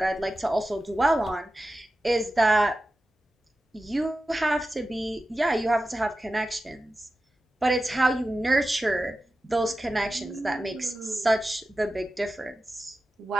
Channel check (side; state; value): both; normal; correlation 0.93